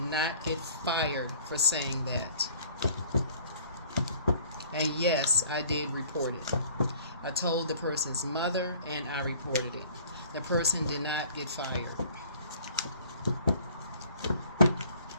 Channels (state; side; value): inverted; both; correlation -0.53